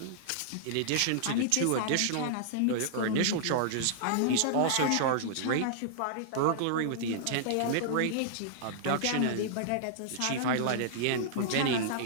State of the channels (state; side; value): different; both; correlation -0.01